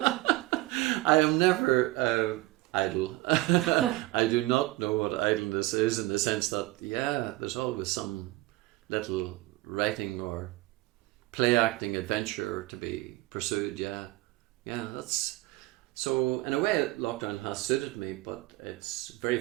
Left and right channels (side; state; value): left; quieter; 19.5 dB